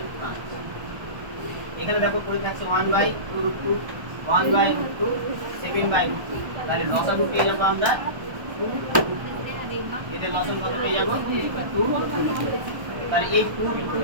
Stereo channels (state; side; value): late; left; 1.3 ms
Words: 5। এখানে দেখো পড়ে থাকছে 1/√2 1/√2 7/√2। তাহলে লসাগু পেয়ে যাবো আমরা 2। এদের লসাগু কত পেয়ে যাবো? 2। তাহলে এই 2